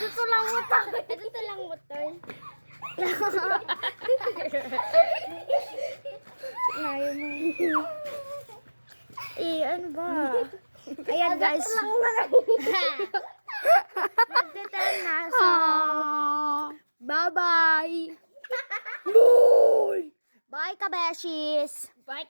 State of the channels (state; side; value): inverted; both; correlation -1.00